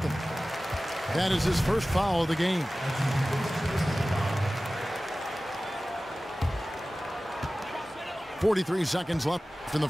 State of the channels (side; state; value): both; normal; correlation 0.97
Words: That is his first foul of the game. .43 seconds left in the